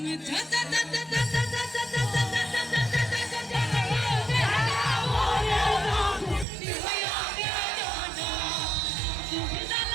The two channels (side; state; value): left; drops out; at 6.5 s